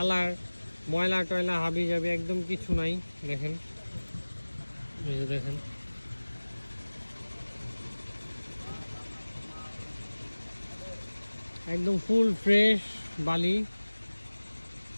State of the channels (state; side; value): inverted; both; correlation -1.00